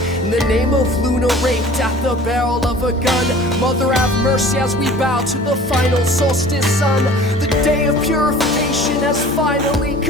In the name of Luna raped at the barrel of a gun, Mother have mercy as we bow to the final solstice sun. The day of purification has finally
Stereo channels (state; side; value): normal; both; correlation 0.45